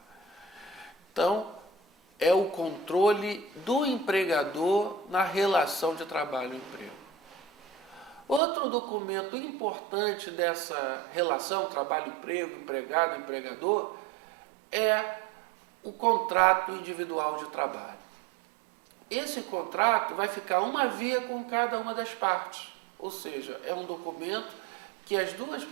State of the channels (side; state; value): left; drops out; at 8.4 s